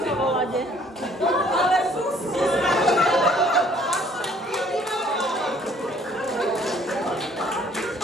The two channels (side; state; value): both; normal; correlation 0.59